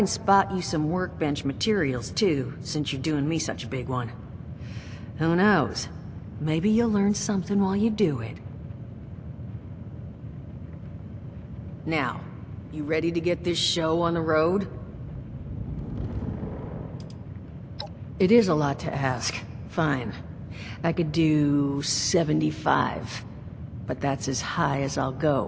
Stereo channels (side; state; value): both; identical; correlation 1.00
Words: spot you some workbench materials too, since you're doing me such a big one. Who knows? Maybe you'll learn something while you do it. Now, you ready to get this show on the road? It is a lot to ask. Fine. I could do 75, but that's as high as I'll